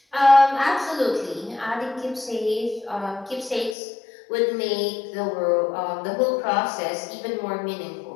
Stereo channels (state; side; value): drops out; right; at 3.8 s